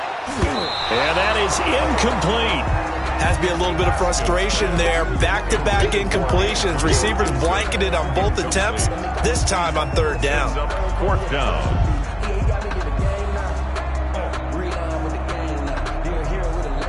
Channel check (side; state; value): both; identical; correlation 1.00